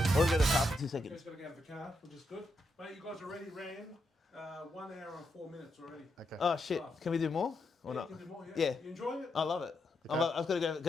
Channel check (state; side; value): normal; both; correlation 0.82